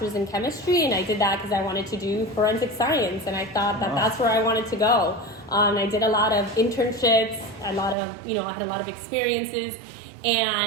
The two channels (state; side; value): drops out; left; at 8.0 s